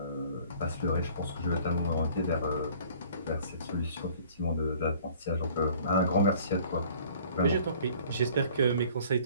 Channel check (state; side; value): inverted; both; correlation -0.52